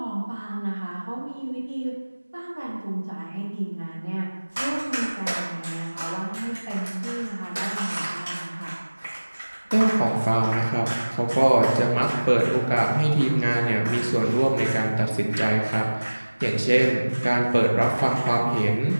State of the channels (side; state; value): both; inverted; correlation -1.00